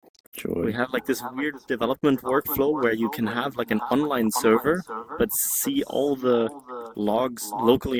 We Joy. have like this weird development workflow where you can have like an online server, but see all the logs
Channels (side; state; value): both; identical; correlation 1.00